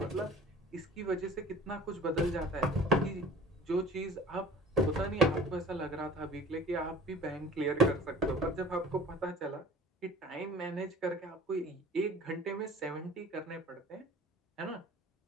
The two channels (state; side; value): normal; both; correlation 0.43